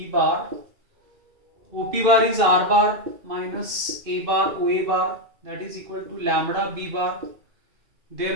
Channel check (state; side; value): late; left; 2.3 ms